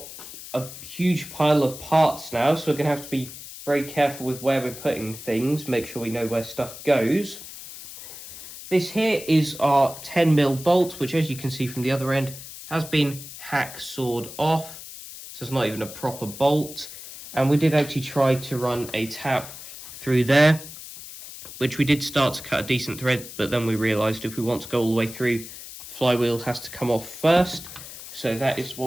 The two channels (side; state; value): left; noise; hiss, 13 dB below the sound